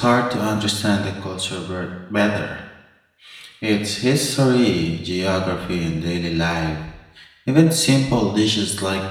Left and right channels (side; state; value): both; identical; correlation 1.00